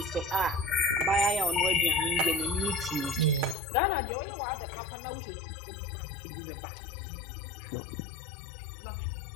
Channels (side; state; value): right; drops out; at 3.6 s